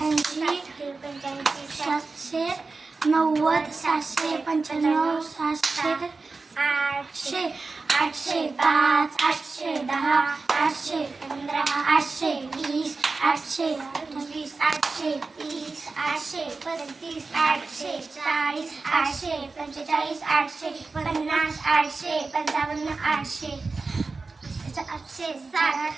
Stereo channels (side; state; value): left; quieter; 3.9 dB